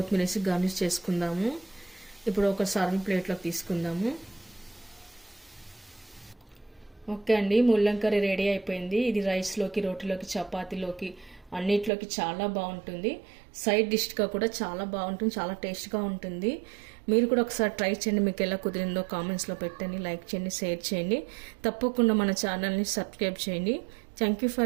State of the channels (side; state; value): left; drops out; at 11.9 s